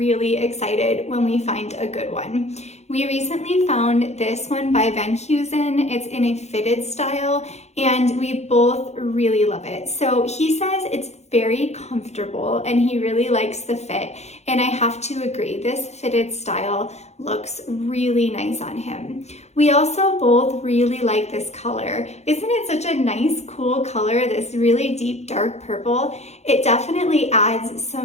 excited when we find a good one. We recently found this one by Heusen. It's in a fitted style, and we both really love it. So he says it's very comfortable and he really likes the fit, and I have to agree, this fitted style looks really nice on him. We also both really like this color. Isn't it such a nice, cool color, this really deep dark purple? It definitely adds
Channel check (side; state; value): right; late; 0.32 ms